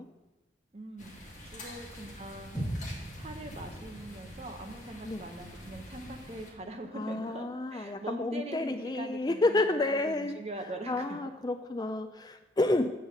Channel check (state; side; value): normal; both; correlation 0.65